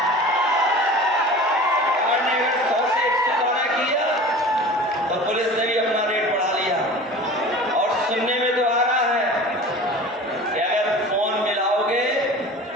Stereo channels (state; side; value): normal; both; correlation 0.39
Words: सरकार ने अगर 100 से 112 किया तो पुलिस ने भी अपना रेट बढ़ा लिया। और सुनने में तो आ रहा है कि अगर फोन मिलाओगे